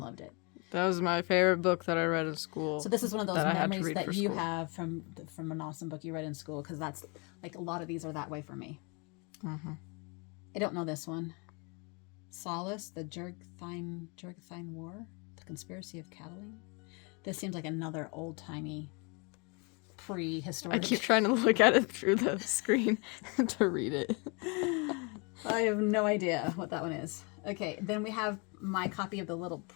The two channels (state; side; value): quieter; right; 31.5 dB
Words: it. That was my favorite book that I read in school. So this is one of those memories that you have from an awesome book you read in school, because that's like a lot of these are that way for me. Mm-hmm. I don't know this one. Solace, the Jurgtheim War, the Conspiracy of Catiline. This seems like another old-timey, prehistoric. I keep trying to look at it through the screen to read it. I have no idea what that one is. Okay, then we have my copy of The Little